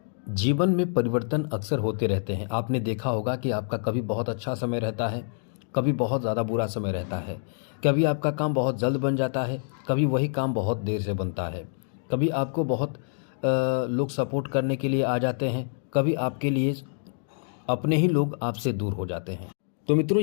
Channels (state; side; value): silent; right; digital silence